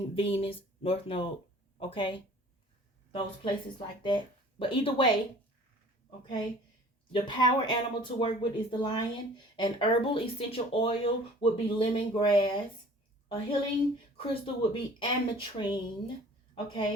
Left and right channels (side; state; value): both; normal; correlation 0.49